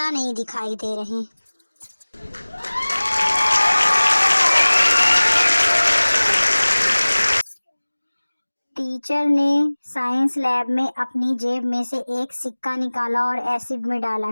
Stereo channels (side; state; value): both; inverted; correlation -1.00